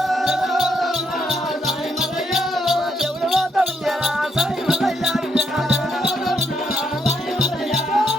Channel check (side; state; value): both; normal; correlation 0.76